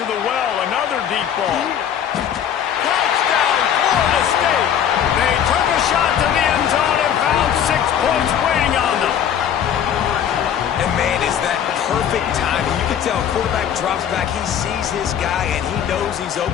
the well, another deep ball. Touchdown, Florida State. They took a shot to the end zone and found 6 points waiting on them. And man, is that perfect timing. You can tell quarterback drops back, he sees his guy, and he knows he's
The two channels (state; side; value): quieter; right; 9.1 dB